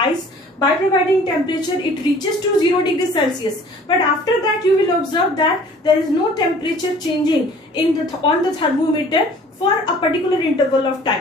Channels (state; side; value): normal; both; correlation 0.51